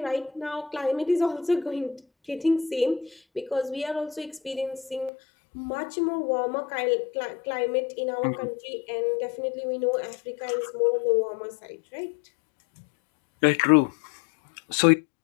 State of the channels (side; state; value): right; drops out; at 5.1 s